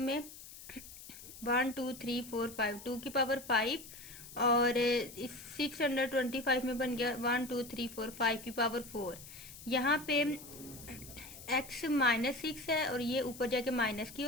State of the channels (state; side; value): noise; left; hiss, 15 dB below the sound